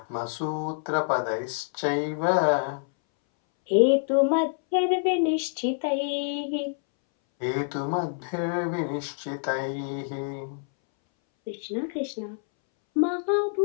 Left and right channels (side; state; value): right; silent; 60 dB below the other